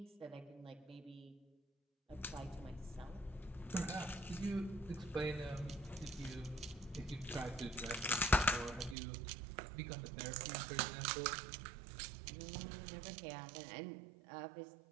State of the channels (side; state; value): left; drops out; at 9.0 s